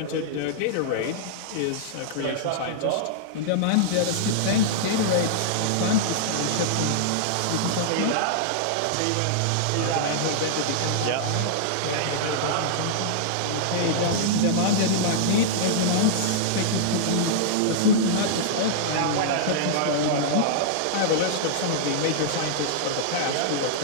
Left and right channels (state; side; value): different; both; correlation -0.02